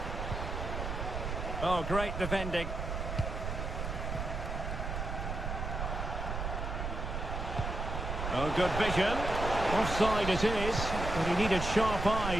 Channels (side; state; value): right; noise; rumble, 4 dB below the sound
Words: Oh, great defending. Oh, good vision. Offside it is, but he needed sharp